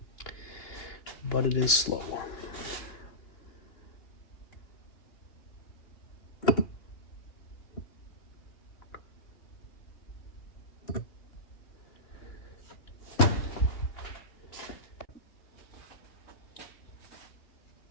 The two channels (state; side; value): late; right; 2.9 ms